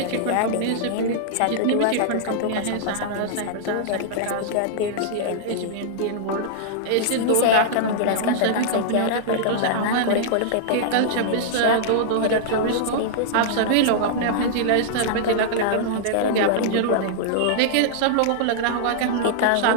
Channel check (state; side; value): different; both; correlation -0.02